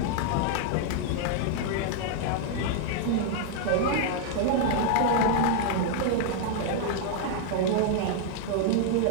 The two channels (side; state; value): both; different; correlation 0.00